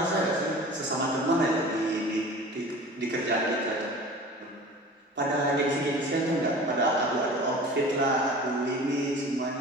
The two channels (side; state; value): both; normal; correlation 0.40